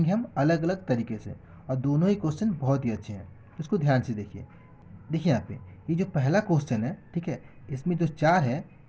हम अलग अलग तरीके से, और दोनों ही क्वेश्चन बहुत ही अच्छे हैं, तो इसको ध्यान से देखिए। देखिए यहाँ पे ये जो पहला क्वेश्चन है, ठीक है, इसमें जो 4 है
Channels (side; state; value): both; identical; correlation 1.00